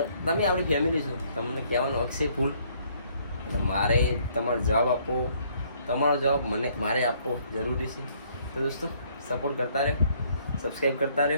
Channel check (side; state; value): both; inverted; correlation -0.65